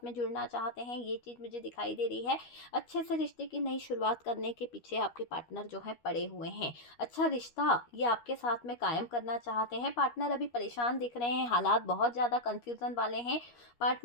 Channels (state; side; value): late; right; 13 ms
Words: में जुड़ना चाहते हैं, ये चीज़ मुझे दिखाई दे रही है। अच्छे से रिश्ते की नई शुरुआत करने के पीछे आपके पार्टनर जो है पड़े हुए हैं। अच्छा रिश्ता ये आपके साथ में कायम करना चाहते हैं। पार्टनर अभी परेशान दिख रहे हैं, हालात बहुत ज़्यादा कन्फ्यूज़न वाले हैं।